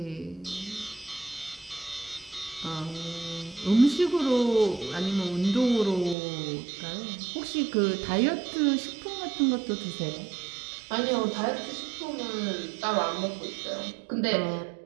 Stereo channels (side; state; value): left; drops out; at 6.2 s